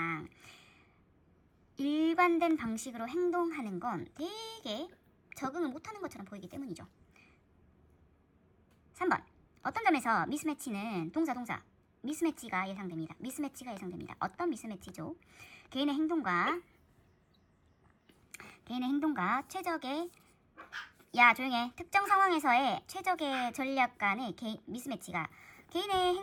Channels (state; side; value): identical; both; correlation 1.00